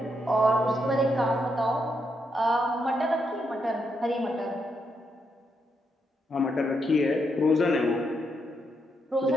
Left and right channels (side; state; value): both; normal; correlation 0.80